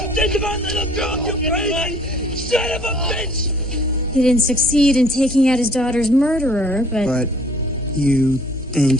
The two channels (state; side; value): normal; both; correlation 0.56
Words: You think about little girl, you crazy son of a bitch! He didn't succeed in taking out his daughter's murderer, But you think